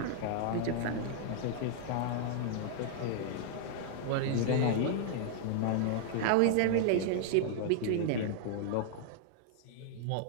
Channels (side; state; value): both; different; correlation -0.01